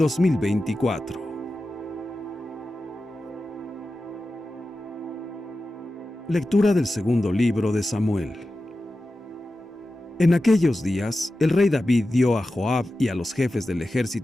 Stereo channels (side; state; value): both; normal; correlation 0.93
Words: Lectura del segundo libro de Samuel. En aquellos días, el rey David dio a Joab y a los jefes del